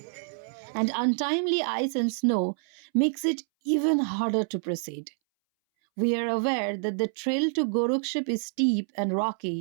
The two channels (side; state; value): left; silent; 60 dB below the other